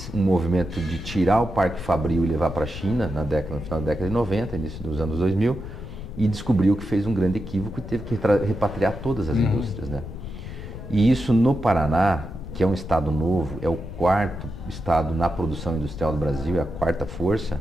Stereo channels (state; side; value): noise; left; rumble, 10 dB below the sound